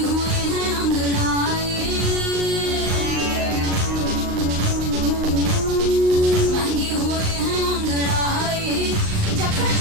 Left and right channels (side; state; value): left; late; 38 ms